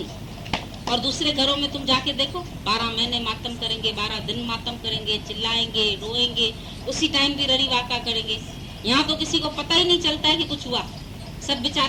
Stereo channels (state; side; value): identical; both; correlation 1.00